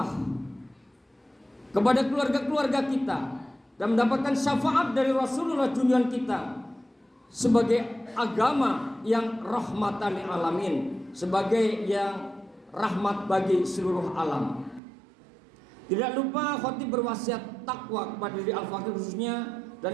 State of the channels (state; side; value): drops out; left; at 14.8 s